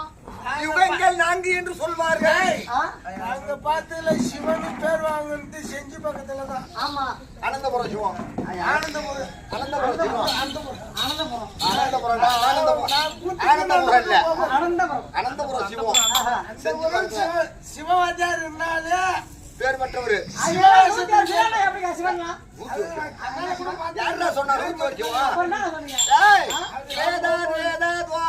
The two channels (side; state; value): both; identical; correlation 1.00